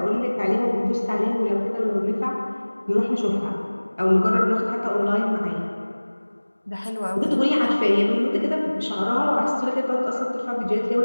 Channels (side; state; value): both; inverted; correlation -1.00